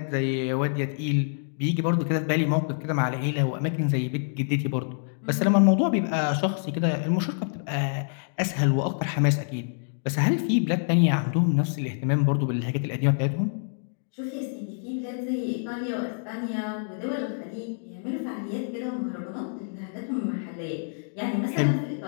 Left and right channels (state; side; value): silent; right; digital silence